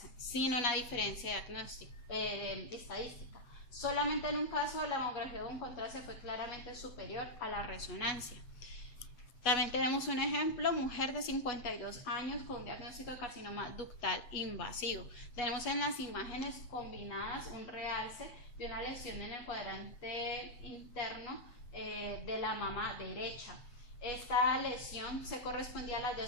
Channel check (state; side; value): late; right; 8.2 ms